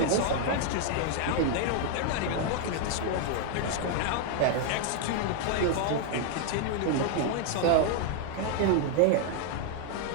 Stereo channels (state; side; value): different; both; correlation 0.00